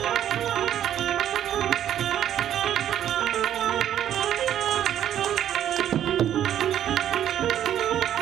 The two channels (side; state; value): left; quieter; 10.7 dB